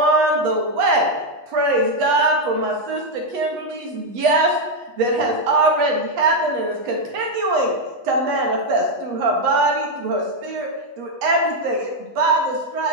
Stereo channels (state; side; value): late; left; 8.2 ms